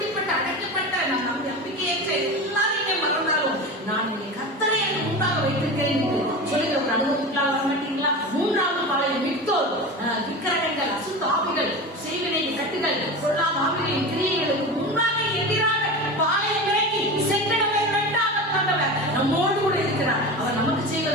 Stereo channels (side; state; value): both; normal; correlation 0.27